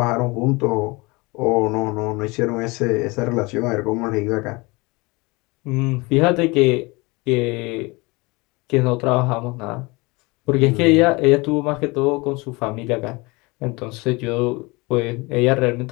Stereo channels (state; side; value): quieter; right; 25.1 dB